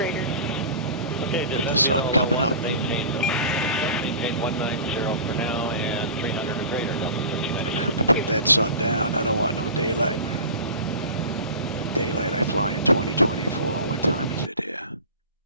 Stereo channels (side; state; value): both; inverted; correlation -0.36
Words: Okay, Got the sun coming up. Maintain 190 for now, and 300 or greater, Delta 1396. Gonna have to put that sun down. I don't want no daylight. Daylight, I fly in 2024. What time is it here?